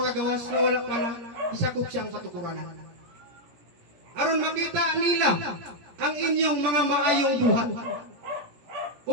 gawas nga wala pa na isakop siyang katukuranan. Aron makita nila ang inyong mga maayong buhat.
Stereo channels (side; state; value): left; late; 17 ms